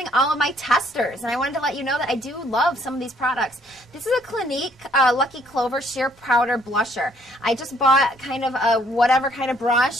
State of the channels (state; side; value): normal; both; correlation 0.65